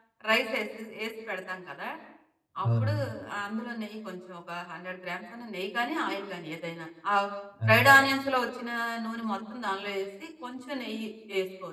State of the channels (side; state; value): both; identical; correlation 1.00